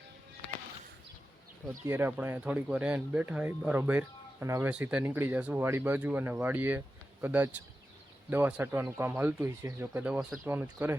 તો અત્યારે આપણે અહીંયા થોડીક વાર એને બેઠા હોય બરોબર અને હવે સીધા નીકળી જશું વાડી બાજુ અને વાડીએ કદાચ દવા છાંટવાનું કામ હાલતું હોય છે। જો કે દવા છાંટવાનું જ કરે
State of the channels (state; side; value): normal; both; correlation 0.92